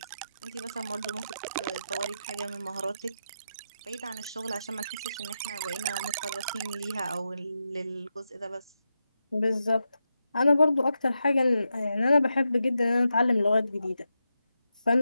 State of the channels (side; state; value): both; inverted; correlation -0.87